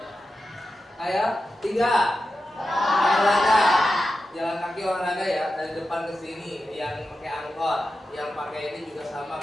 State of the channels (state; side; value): normal; both; correlation 0.91